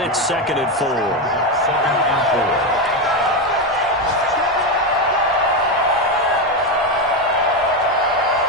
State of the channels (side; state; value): both; normal; correlation 0.11